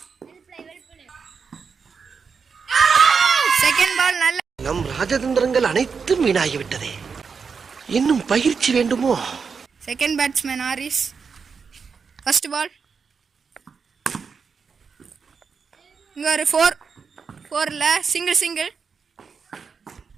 செகண்ட் பால் நல்ல. நம் ராஜதந்திரங்கள் அனைத்தும் வீணாகிவிட்டதே, இன்னும் பயிற்சி வேண்டுமோ? Second batsman Harris. First ball இங்க ஒரு 4 சிங்கிள்.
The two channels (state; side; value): quieter; left; 5.7 dB